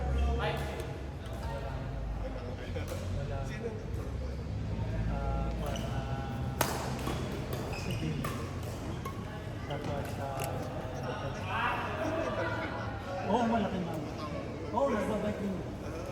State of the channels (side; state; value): both; identical; correlation 1.00